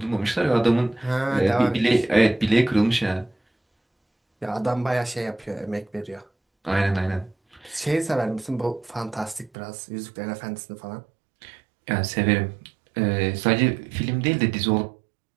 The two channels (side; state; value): left; drops out; at 9.5 s